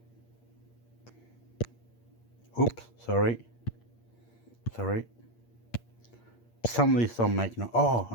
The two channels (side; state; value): right; late; 8.6 ms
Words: Oops, sorry. Some of these don't make no. Oh